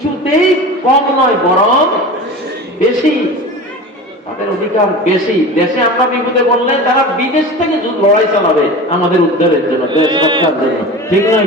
কম নয়, বরং বেশি। তাদের অধিকার বেশি। দেশে আমরা বিপদে বললে তারা বিদেশ থেকে লড়াই চালাবে আমাদের উদ্ধারের জন্য, দেশ রক্ষার জন্য, ঠিক নয়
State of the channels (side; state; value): both; normal; correlation 0.32